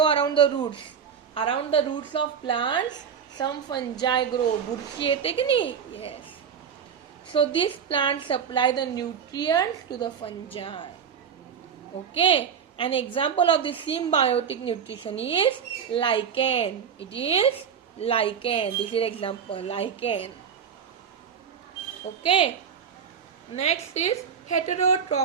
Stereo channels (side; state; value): left; quieter; 7.3 dB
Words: around the roots. Around the roots of plants, some fungi grow. Burshi yete ki nahi? Yes. So these plants supply the nutrients to the fungi. Okay. An example of this symbiotic nutrition is lichen. It is lichen. This is example, lichen. Okay. Next is